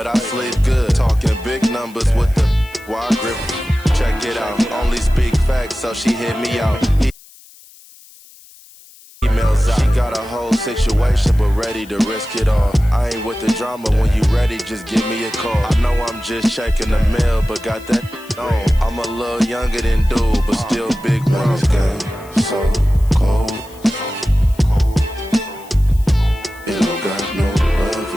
I sleep good. Talking big numbers with the wide grip. Check it out. Only speak facts, so she hit me out. Emails out. She got a whole situation, but ready to risk it all. I ain't with the drama. When you ready, just give me a call. I know I'm just checking the mail, but got that on. I'm a little younger than dude, but still big wings. Game so cold. It don't got no love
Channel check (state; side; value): noise; left; hiss, 24 dB below the sound